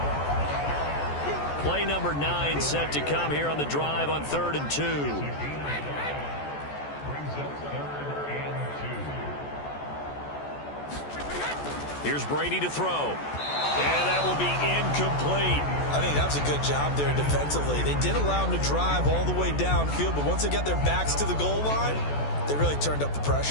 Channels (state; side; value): late; right; 14 ms